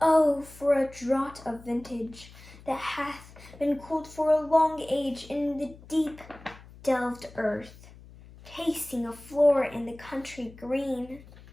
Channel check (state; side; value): noise; left; hum, 20 dB below the sound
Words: Oh, for a draught of vintage that hath been cooled for a long age in the deep delved earth, tasting a floor in the country green,